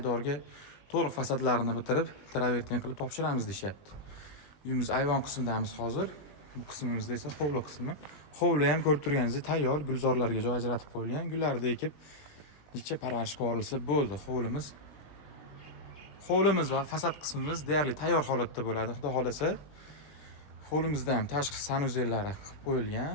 to'liq fasadlarini bitirib, travertin qilib topshiramiz deyapti. Uyimiz ayvon qismidamiz hozir. Bu qismimizda esa hovli qismi. Hovli ham ko'rib turganingizdek tayyor, gulzorlarga joy ajratib qo'yilgan. Gullarni ekib, necha parvarishga yuborilsa bo'ldi hovlimiz. Hovlimiz va fasad qismimiz deyarli tayyor holatda bo'ladi. Xudo xolasa, hovlimizda ham tashqi sanuzellari qilib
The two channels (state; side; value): late; right; 20 ms